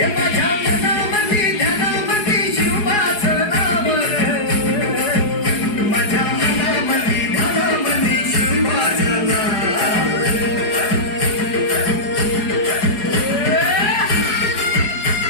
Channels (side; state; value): right; late; 4.8 ms